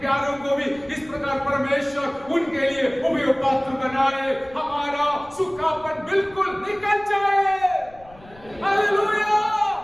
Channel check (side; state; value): left; noise; rumble, 24 dB below the sound